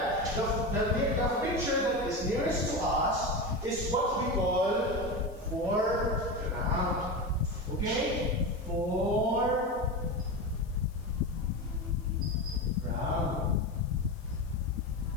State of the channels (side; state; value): left; noise; hiss, 28 dB below the sound